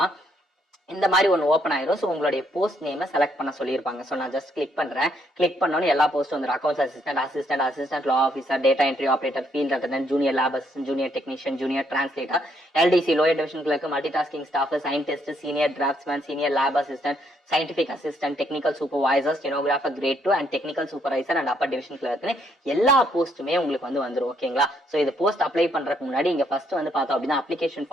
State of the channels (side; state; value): both; normal; correlation 0.71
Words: இந்த மாதிரி ஒன்று ஓப்பன் ஆயிரும். ஸோ உங்களுடைய போஸ்ட் நேமை செலக்ட் பண்ண சொல்லியிருப்பாங்க. ஸோ நான் ஜஸ்ட் கிளிக் பண்றேன். கிளிக் பண்ணோன்னு எல்லா போஸ்ட் வந்துடும். Accounts assistant law officer, data entry operator, field attendant, junior lab assistant, junior technician, junior translator, LDC lower division clerk, multi tasking staff, scientist, senior draftsman, senior lab assistant, scientific assistant, technical supervisor, stenographer grade 2 and technical supervisor and upper division clerk எல்லா போஸ்ட்டுமே உங்களுக்கு வந்து வந்துரும். ஓகேங்களா? So இது post apply பண்றதுக்கு முன்னாடி இங்க first வந்து பார்த்தோம் அப்படின்னா அப்ளிகேஷன்